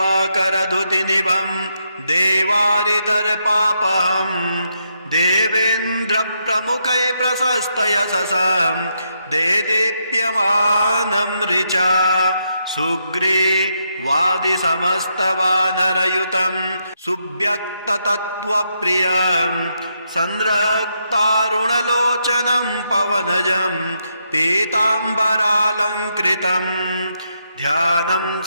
देवारितर्पापहम् देवेन्द्रप्रमुखै प्रशस्तयशसं देदीप्यमानं ऋचा सुग्रीवादिसमस्तवानरयुतं सुव्यक्ततत्त्वप्रियं संरक्तारुणलोचनं पवनजं पीताम्बरालङ्कृतं ध्यानं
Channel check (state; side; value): inverted; both; correlation -0.80